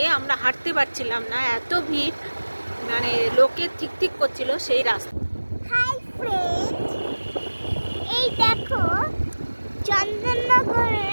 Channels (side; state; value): both; inverted; correlation -1.00